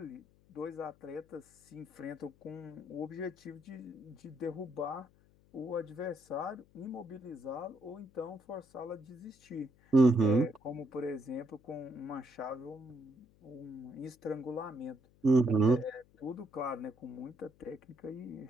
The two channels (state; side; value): noise; left; hum, 29 dB below the sound